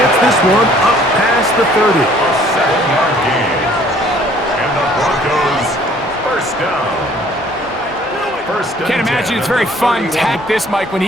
this one up past the 30. A 7-yard gain. And the Broncos first down. Can't imagine it's very fun to hack this, Mike, when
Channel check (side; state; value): both; normal; correlation 0.57